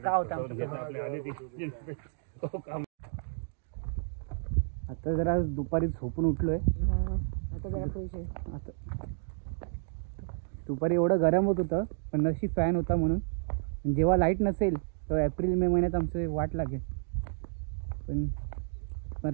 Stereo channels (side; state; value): left; silent; digital silence